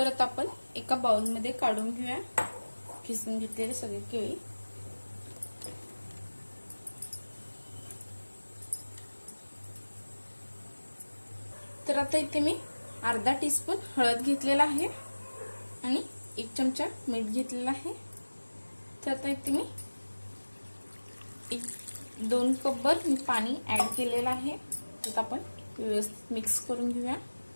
आता आपण एका बाउल मध्ये काढून घेऊया खिसून घेतलेले सगळे केळी। तर आता इथे मी अर्धा टीस्पून हळद घेतलेला आहे आणि 1 चमचा मीठ घेतलेला आहे। तर आता इथे मी 2 कपभर मी पाणी ऍड केलेलं आहे। तर आपण व्यवस्थित मिक्स करून घेऊया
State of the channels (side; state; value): both; inverted; correlation -1.00